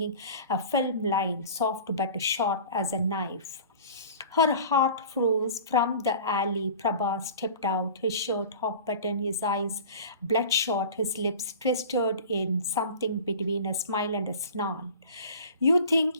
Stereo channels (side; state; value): both; inverted; correlation -0.40